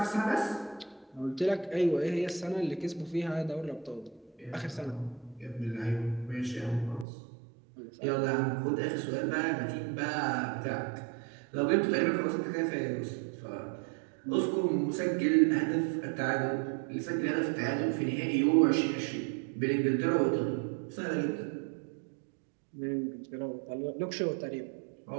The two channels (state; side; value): drops out; left; at 7.1 s